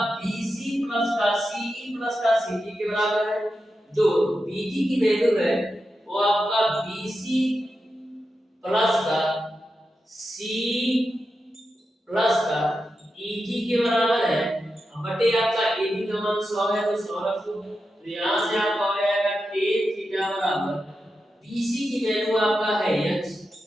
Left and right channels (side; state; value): both; normal; correlation 0.89